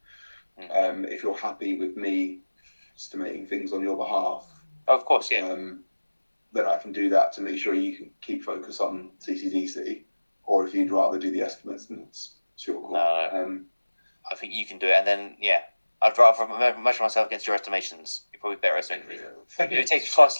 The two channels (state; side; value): inverted; both; correlation -1.00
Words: If you're happy with me estimating things on your behalf, of course, yeah. Then I can do that to make sure you can keep focus on CCDC, or if you'd rather do the estimates, then it's your call. No. I think you can do it, and then I'd rather measure myself against your estimations. You're probably better estimating. If it takes twice as